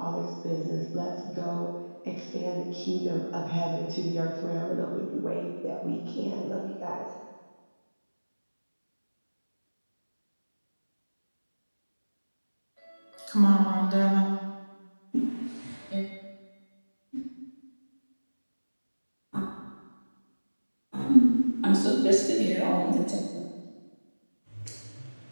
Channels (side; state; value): both; inverted; correlation -1.00